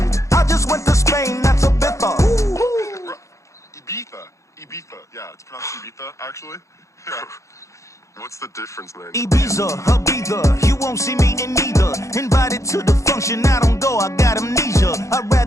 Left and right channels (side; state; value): right; late; 0.15 ms